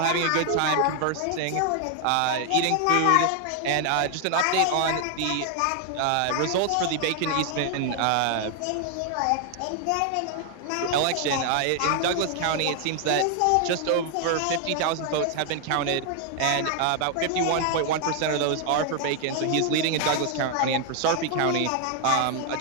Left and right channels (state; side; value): different; both; correlation 0.00